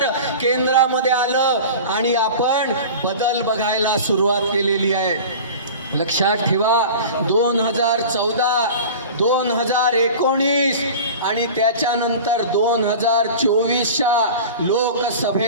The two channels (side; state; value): both; inverted; correlation -0.36